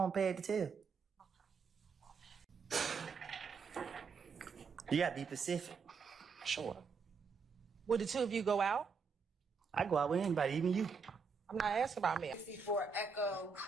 pad to tell? You gotta be specific. Sure. Would the two of you go out? I go out with anybody, even you. I'm not asking about me. 64 Echo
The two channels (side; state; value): left; quieter; 5.3 dB